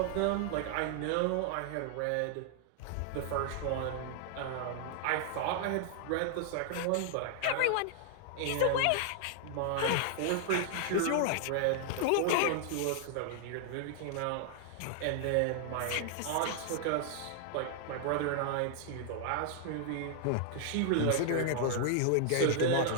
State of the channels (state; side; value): different; both; correlation 0.00